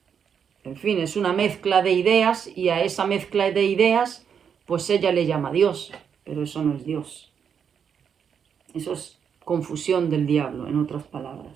fin, es una mezcla de ideas, y a esa mezcla de ideas, pues ella le llama Dios, pero eso no es Dios. Eso es confusión del diablo, en otras palabras.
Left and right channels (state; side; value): quieter; left; 7.4 dB